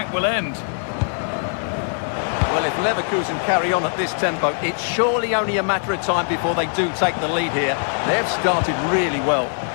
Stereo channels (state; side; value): silent; right; 65 dB below the other